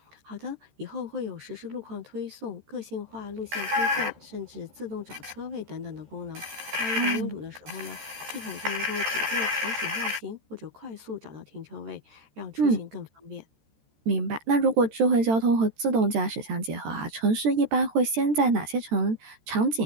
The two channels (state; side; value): late; left; 13 ms